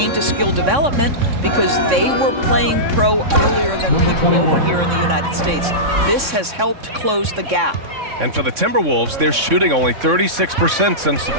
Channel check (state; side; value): late; left; 3.6 ms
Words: to skill development because they were playing pro earlier than people over here in the United States. This has helped close the gap. And for the Timberwolves, they're shooting only 36% since the